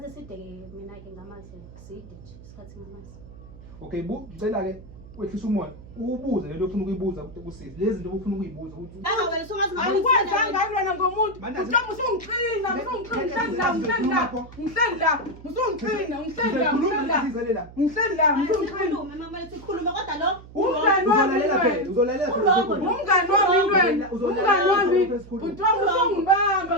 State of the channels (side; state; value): right; noise; hum, 18 dB below the sound